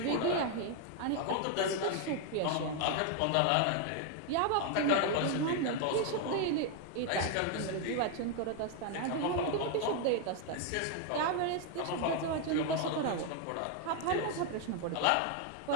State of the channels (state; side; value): different; both; correlation 0.00